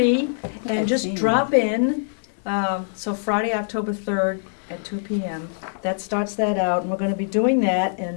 and I've just seen drop in. So Friday, October 3rd at 2 p.m. That starts that out, and we're going to be doing that,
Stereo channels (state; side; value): silent; right; digital silence